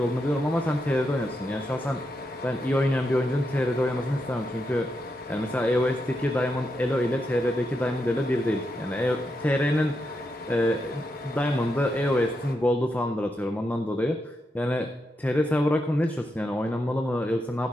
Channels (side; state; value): both; normal; correlation 0.84